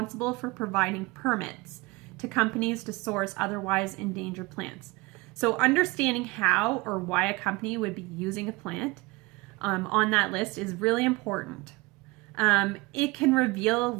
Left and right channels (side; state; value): left; quieter; 23.6 dB